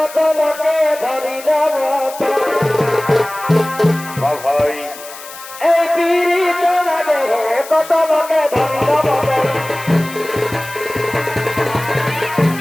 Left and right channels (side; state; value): left; noise; hiss, 15 dB below the sound